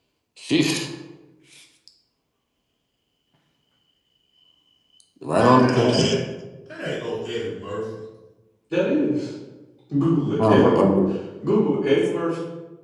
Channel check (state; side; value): identical; both; correlation 1.00